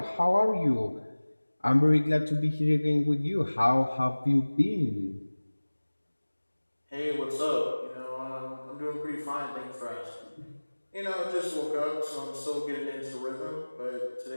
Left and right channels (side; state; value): both; inverted; correlation -1.00